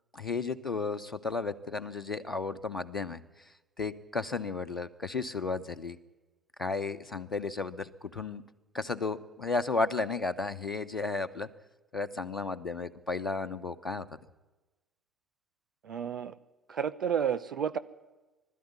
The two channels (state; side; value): normal; both; correlation 0.46